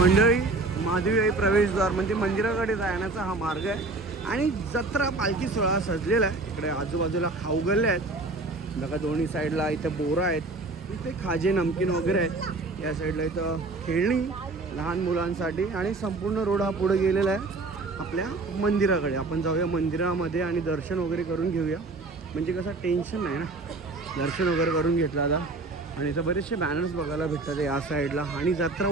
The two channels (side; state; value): left; quieter; 3.3 dB